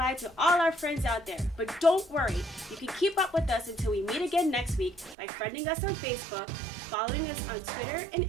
to all our friends out there. But don't worry, you can keep up with us until we meet again next week by friending us on Facebook, following us on Twitter and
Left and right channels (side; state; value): left; drops out; at 5.2 s